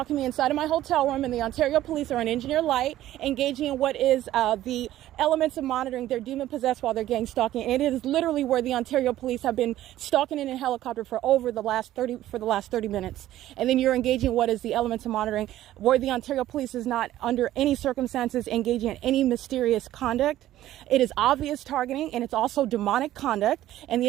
me inside of my hotel room, and the Ontario Police are on engineer light, engaging in what is the elements of monitoring. They're demon possessed while they're gang stalking. And it is literally where the Ontario Police have been stalking in a helicopter for the last 30 minutes. And then you're engaging what is the elements of monitoring, where the Ontario Police is not under any circumstances engaging in any mysterious conduct. It is obvious targeting, and it's also demonic conduct, and the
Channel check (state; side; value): quieter; left; 13.8 dB